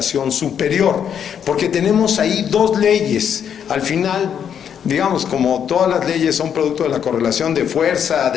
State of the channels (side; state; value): right; quieter; 8.3 dB